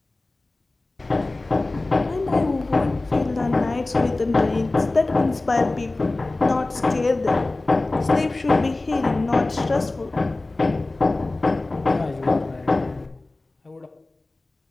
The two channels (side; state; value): right; quieter; 3.0 dB